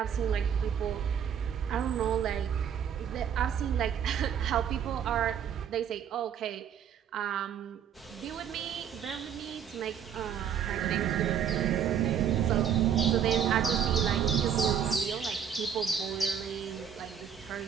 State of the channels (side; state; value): left; quieter; 8.4 dB